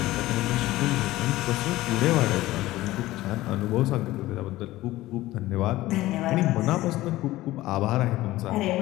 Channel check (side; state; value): right; quieter; 17.0 dB